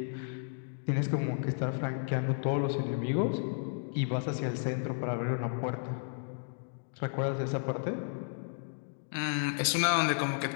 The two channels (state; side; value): silent; right; digital silence